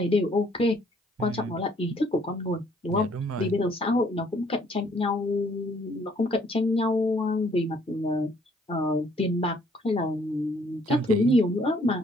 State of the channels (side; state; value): both; normal; correlation 0.64